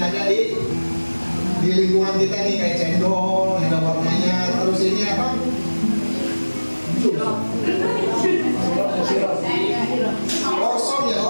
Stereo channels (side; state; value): both; inverted; correlation -1.00